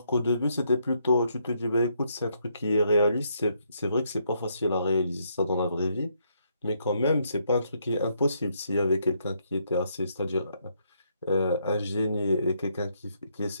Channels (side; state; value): both; inverted; correlation -0.74